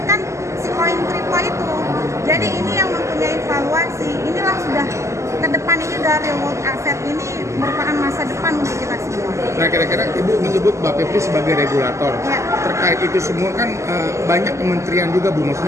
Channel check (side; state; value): left; late; 0.14 ms